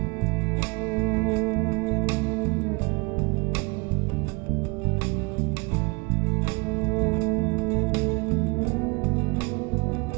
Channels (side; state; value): left; quieter; 28.4 dB